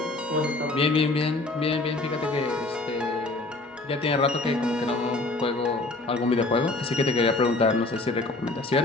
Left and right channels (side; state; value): right; quieter; 3.0 dB